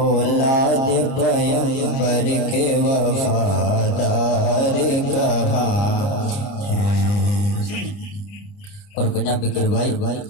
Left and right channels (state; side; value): late; right; 30 ms